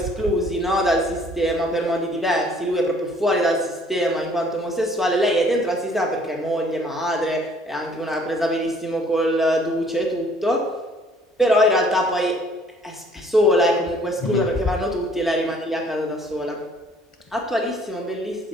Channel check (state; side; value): normal; both; correlation 0.59